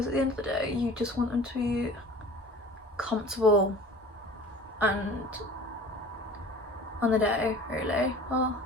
at the end of the day you just want them to be comfortable and on the day, really, well,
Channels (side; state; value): both; normal; correlation 0.42